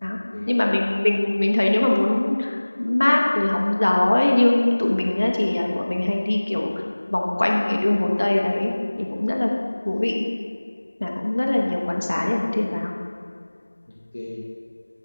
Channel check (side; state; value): both; inverted; correlation -1.00